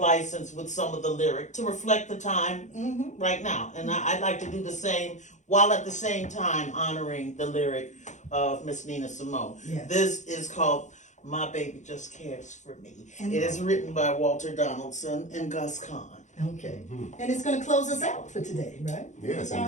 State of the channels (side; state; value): right; late; 0.35 ms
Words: with some of the lyric to reflect the time right now. And I'd like to do the same, while at the same time honoring the lyric of Miss Nina Simone. Yes. This is called My Baby Just Cares for Me. And- It is written by Walter Donaldson and Gus Kahn. Okay. And it's going to close us out for today, right? Yes,